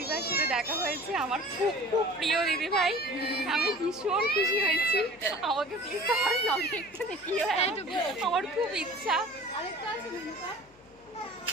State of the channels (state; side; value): noise; left; hum, 28 dB below the sound